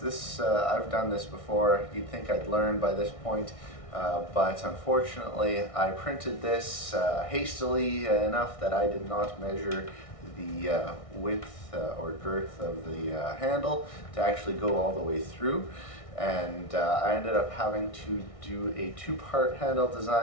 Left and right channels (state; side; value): late; right; 1.6 ms